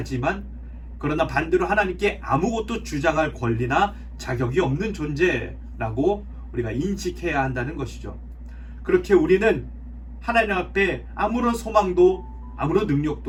그러나 반대로 하나님께 아무것도 주장할 권리나 자격이 없는 존재라고 우리가 인식해야 한다는 것이죠. 그렇게 우리는 하나님 앞에 아무런 소망도 아무런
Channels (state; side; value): identical; both; correlation 1.00